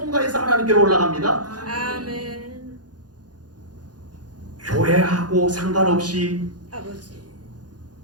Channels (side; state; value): left; late; 0.69 ms